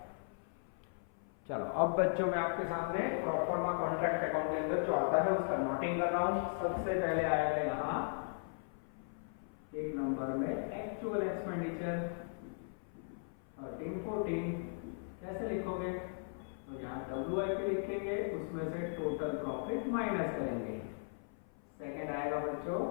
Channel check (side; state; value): right; silent; 53 dB below the other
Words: चलो अब बच्चों मैं आपके सामने प्रोफॉर्मा कॉन्ट्रैक्ट अकाउंट के अंदर जो आता है उसका नोटिंग कर रहा हूं। सबसे पहले आएगा यहाँ एक नंबर में एक्चुअल एक्चुअल एक्सपेंडिचर 1314 कैसे लिखोगे? तो यहाँ WIP लिखेंगे, उसमें से टोटल प्रॉफिट माइनस करेंगे। सेकंड आएगा बच्चों